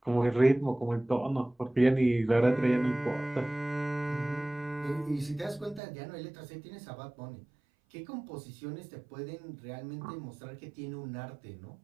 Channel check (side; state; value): left; drops out; at 5.8 s